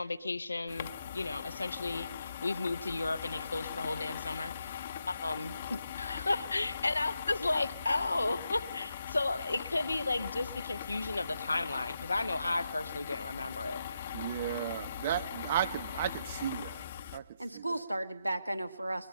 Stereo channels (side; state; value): both; inverted; correlation -0.82